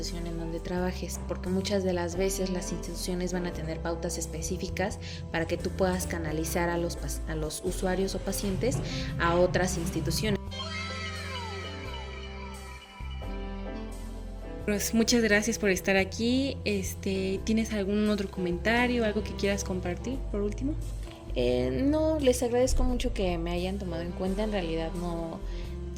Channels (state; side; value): identical; both; correlation 1.00